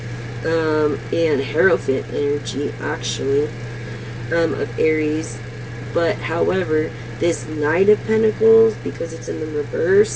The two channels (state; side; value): identical; both; correlation 1.00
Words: And Hierophant energy, actually, of Aries. But, however, this Knight of Pentacles, because it's in the